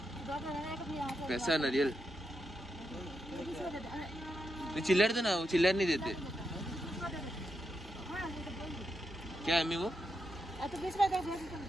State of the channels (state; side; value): normal; both; correlation 0.84